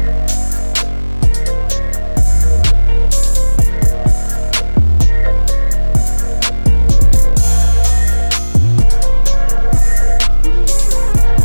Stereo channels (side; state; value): both; inverted; correlation -1.00